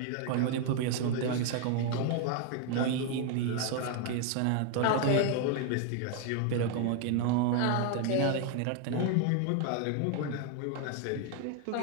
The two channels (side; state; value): both; different; correlation 0.00